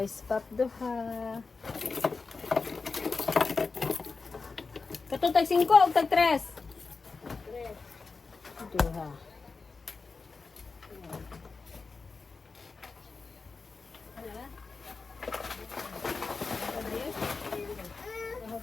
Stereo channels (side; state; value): right; quieter; 4.3 dB